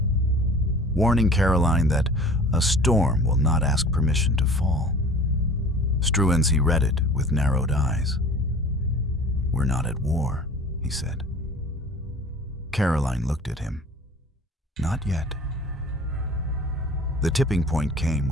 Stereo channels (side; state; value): both; normal; correlation 0.44